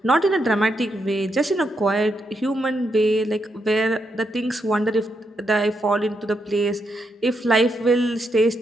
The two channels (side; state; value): both; normal; correlation 0.81